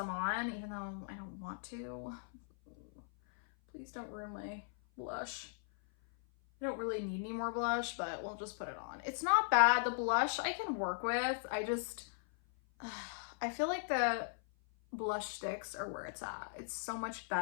on, even though I don't want to. Please don't ruin my blush. I don't really need any more blush, but we'll just put it on. It's not bad. The blush I can work with. I feel like the blush sticks are where it's at. It's so much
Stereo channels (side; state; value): right; silent; 52 dB below the other